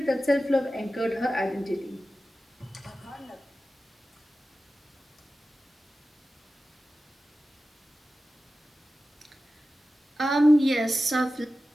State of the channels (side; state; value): both; normal; correlation 0.94